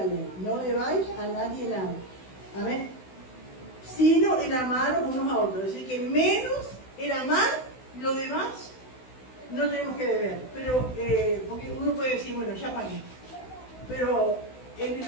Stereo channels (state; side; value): late; right; 16 ms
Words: ley. No debáis a nadie nada. Amén. Sino el amaros unos a otros. Es decir, que menos el amar, lo demás no tenemos que deber. Pero, porque uno puede decir, bueno, ya pagué. Pero en